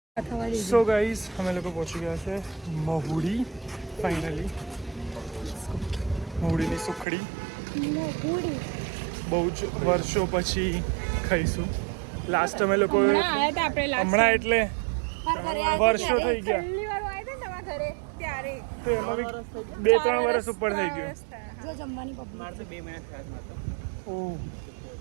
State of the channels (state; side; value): drops out; left; at 7.1 s